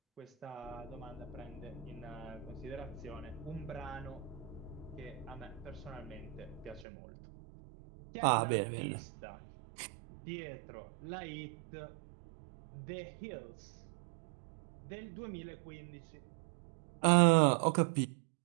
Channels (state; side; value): drops out; left; at 6.9 s